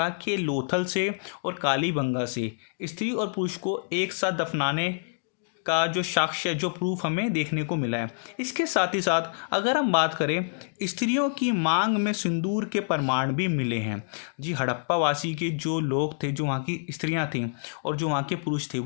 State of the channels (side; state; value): right; silent; digital silence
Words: कि लोथल से और कालीबंगा से स्त्री और पुरुष को एक साथ दफनाने का जो साक्ष्य, जो प्रूफ हमें देखने को मिला है। इसके साथ ही साथ अगर हम बात करें, स्त्रियों की मांग में सिंदूर के प्रमाण भी मिले हैं। जी, हड़प्पा वासी के जो लोग थे, जो वहाँ की स्त्रियाँ थीं और जो वहाँ के पुरुष थे,